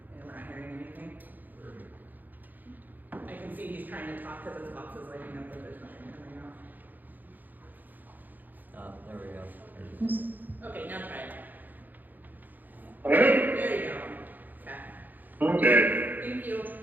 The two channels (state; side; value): late; left; 0.085 ms